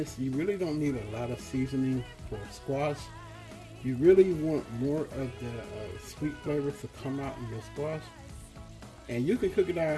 you really don't need a lot of seasoning for squash. You really want more of the sweet flavor to come out in your squash. And you can cook it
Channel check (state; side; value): identical; both; correlation 1.00